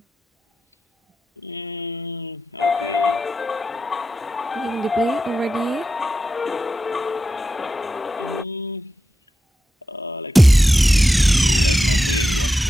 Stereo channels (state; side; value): normal; both; correlation 0.90